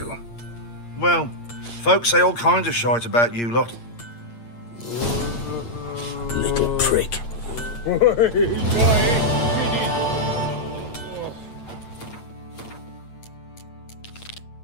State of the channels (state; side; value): late; right; 8.6 ms